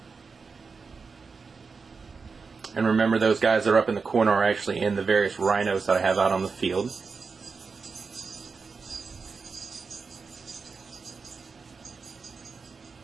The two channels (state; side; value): quieter; left; 4.9 dB